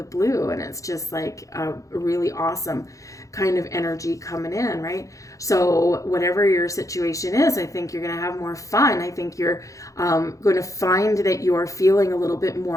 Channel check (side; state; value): right; late; 0.16 ms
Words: blue, and it's just like a really awesome kind of energy coming in, right? So whatever your situation is, I think you're going to have more fun. I think you're going to find that you're feeling a little bit